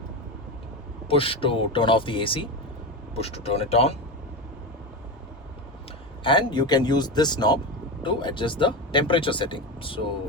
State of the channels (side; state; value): both; normal; correlation 0.19